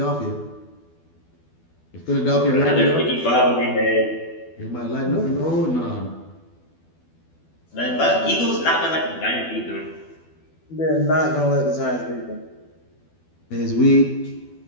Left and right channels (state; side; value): late; right; 12 ms